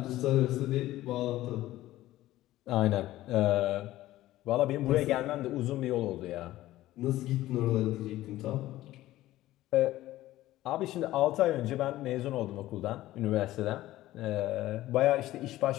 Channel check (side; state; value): right; quieter; 15.6 dB